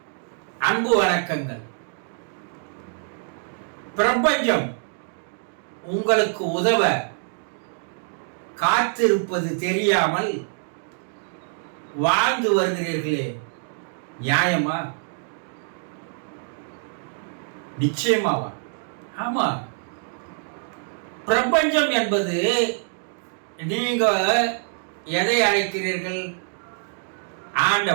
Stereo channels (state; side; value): silent; left; 58 dB below the other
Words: அன்பு வணக்கங்கள். பிரபஞ்சம் உங்களுக்கு உதவ காத்திருப்பது தெரியாமல் வாழ்ந்து வருகிறீர்களே, நியாயமா? நிச்சயமாவா? ஆமா. பிரபஞ்சம் என்பது நீங்க எதை அழைக்கிறீர்கள்?